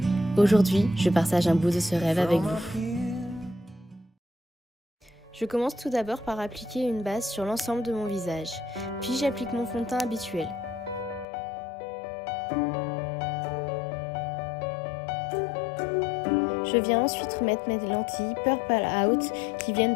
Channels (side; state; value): right; drops out; at 11.2 s